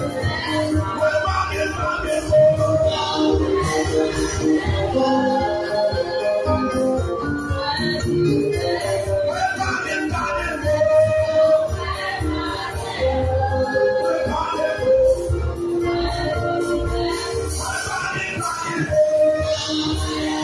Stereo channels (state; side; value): identical; both; correlation 1.00